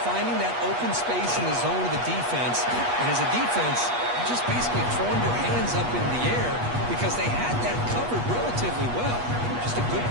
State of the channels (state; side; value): late; left; 8.3 ms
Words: finding that open space in the zone of the defense. And as a defense, you're just basically throwing your hands up in the air because they had that covered relatively well. Just a good